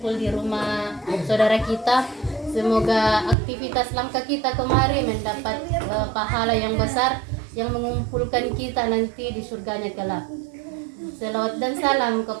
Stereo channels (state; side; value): drops out; left; at 3.4 s